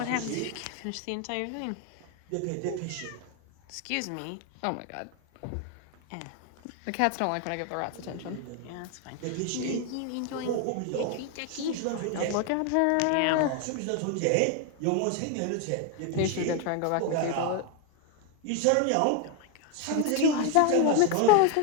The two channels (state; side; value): different; both; correlation 0.01